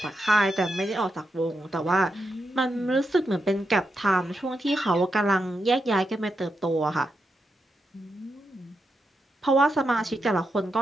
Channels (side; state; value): both; normal; correlation 0.85